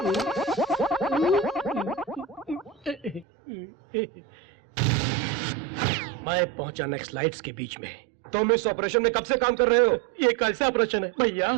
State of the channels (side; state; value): left; drops out; at 3.2 s